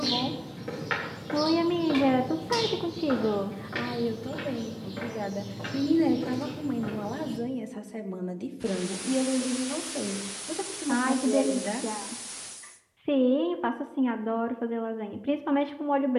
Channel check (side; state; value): both; identical; correlation 1.00